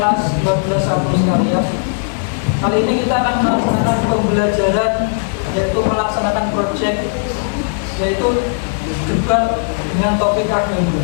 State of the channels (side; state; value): right; silent; digital silence